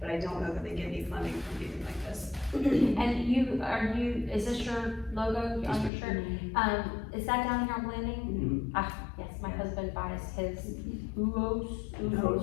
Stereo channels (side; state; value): right; drops out; at 5.9 s